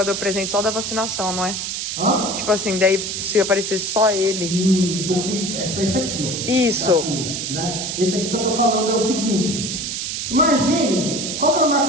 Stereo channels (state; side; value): noise; right; hiss, 3 dB below the sound